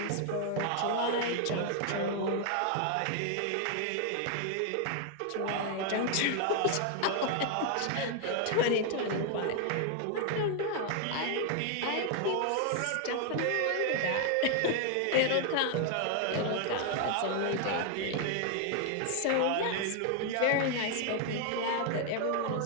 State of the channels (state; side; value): different; both; correlation 0.00